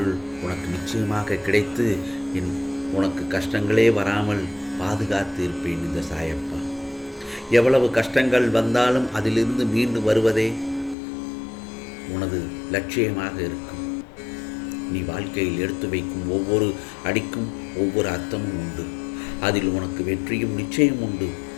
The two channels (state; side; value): drops out; right; at 11.0 s